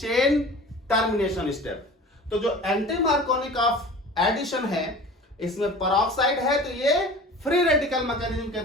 टर्मिनेशन स्टेप। तो जो एंटी मार्कोवनिकॉफ एडिशन है इसमें पेरोक्साइड है तो ये फ्री रेडिकल मैकेनिज्म के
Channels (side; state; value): both; normal; correlation 0.40